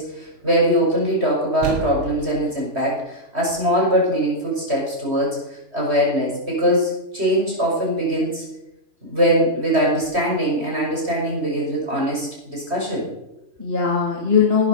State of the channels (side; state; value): left; late; 3.1 ms